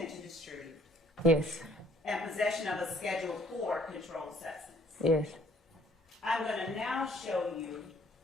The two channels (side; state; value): both; normal; correlation 0.59